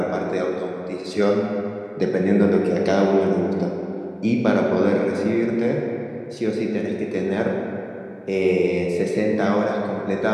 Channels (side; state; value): both; identical; correlation 1.00